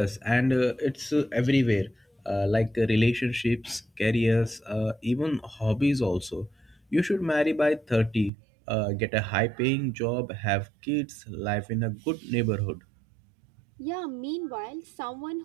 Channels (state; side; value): drops out; left; at 8.3 s